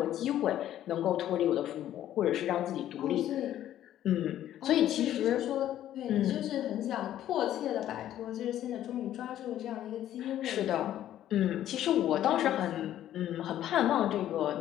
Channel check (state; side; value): quieter; right; 12.0 dB